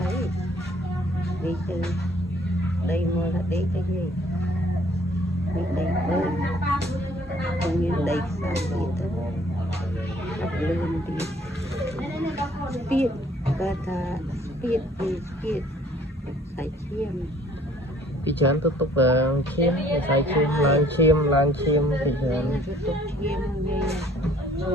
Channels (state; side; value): normal; both; correlation 0.58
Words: đi từ đây mua là đi cái gì đi đây bơi không như đây sao đi tới gặp lươn đi spiết kata spiết đi spiết sải chiêm ពីច្រើនទៅទុកឈាមវិស័យឈាមឡើងឈាមពីច្រើន ទៅទុកឈាមយាយ